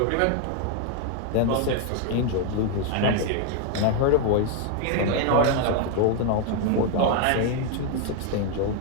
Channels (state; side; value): different; both; correlation 0.00